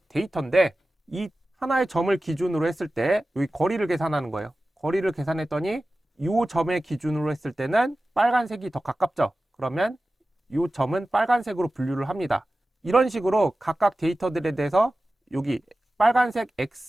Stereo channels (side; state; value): both; normal; correlation 0.95